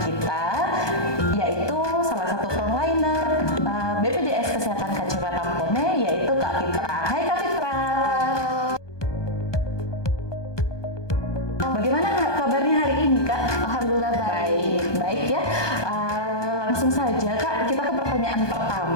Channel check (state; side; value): late; right; 1.2 ms